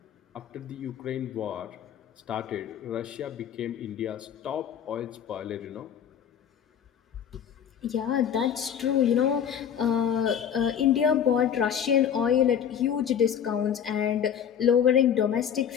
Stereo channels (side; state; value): right; quieter; 8.6 dB